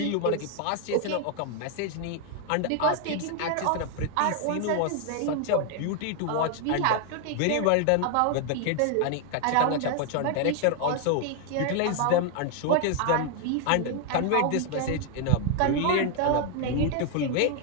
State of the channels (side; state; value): both; different; correlation 0.00